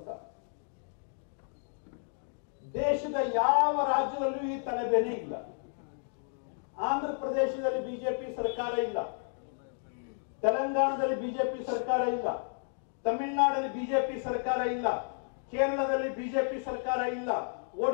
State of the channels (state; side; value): silent; right; digital silence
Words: ದೇಶದ ಯಾವ ರಾಜ್ಯದಲ್ಲೂ ಈ ತಲೆಬೇನೆ ಇಲ್ಲ. ಆಂಧ್ರ ಪ್ರದೇಶದಲ್ಲಿ ಬಿಜೆಪಿ ಸರ್ಕಾರ ಇಲ್ಲ, ತೆಲಂಗಾಣದಲ್ಲಿ ಬಿಜೆಪಿ ಸರ್ಕಾರ ಇಲ್ಲ, ತಮಿಳುನಾಡಲ್ಲಿ ಬಿಜೆಪಿ ಸರ್ಕಾರ ಇಲ್ಲ, ಕೇರಳದಲ್ಲಿ ಬಿಜೆಪಿ ಸರ್ಕಾರ ಇಲ್ಲ,